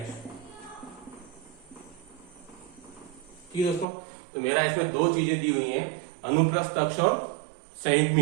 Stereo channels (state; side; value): drops out; left; at 3.9 s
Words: ठीक है दोस्तों, तो मेरा इसमें 2 चीजें दी हुई हैं, अनुप्रस्थ अक्ष और